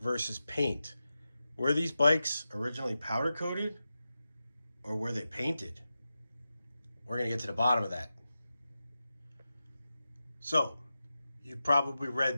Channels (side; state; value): both; inverted; correlation -0.92